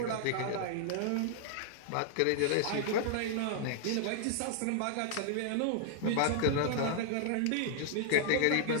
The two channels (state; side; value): different; both; correlation -0.01